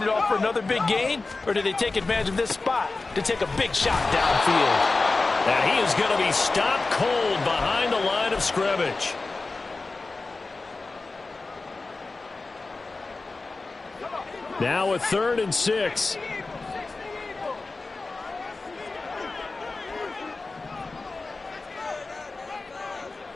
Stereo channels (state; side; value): quieter; right; 3.6 dB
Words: it off for another big gain, or do they take advantage of this spot to take a big shot downfield? And he is going to be stopped cold behind the line of scrimmage. Now a 3rd and 6.